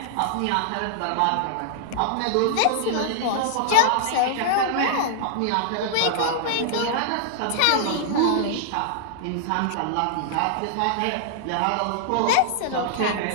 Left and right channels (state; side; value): different; both; correlation -0.01